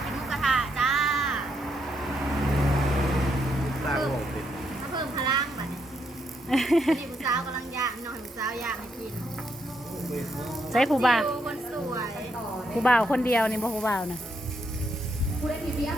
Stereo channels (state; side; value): normal; both; correlation 0.77